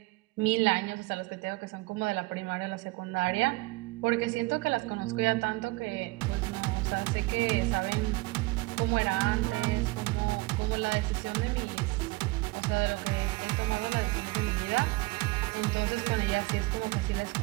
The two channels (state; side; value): quieter; left; 23.3 dB